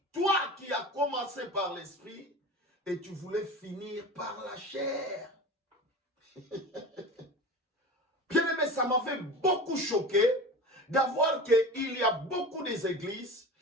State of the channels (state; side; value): normal; both; correlation 0.32